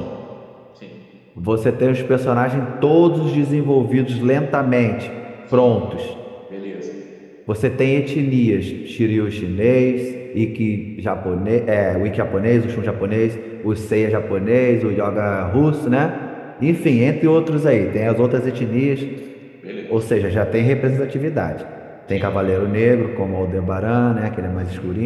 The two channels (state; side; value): identical; both; correlation 1.00